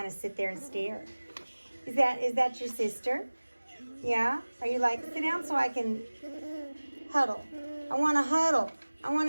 of sit there and stare. Is that your sister? Yeah? Are you like, sit down so I can huddle? I want to huddle. I want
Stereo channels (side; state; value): both; inverted; correlation -1.00